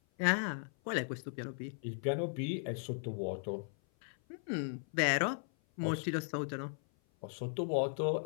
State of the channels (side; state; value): right; silent; 53 dB below the other